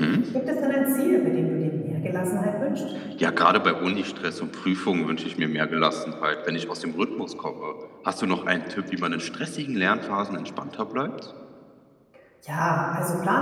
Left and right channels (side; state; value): both; identical; correlation 1.00